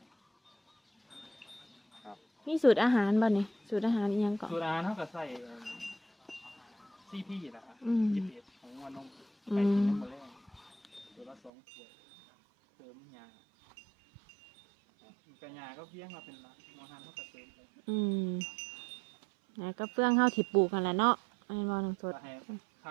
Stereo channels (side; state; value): left; drops out; at 11.5 s